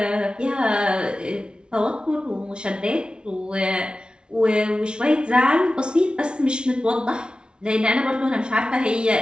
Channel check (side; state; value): left; late; 0.056 ms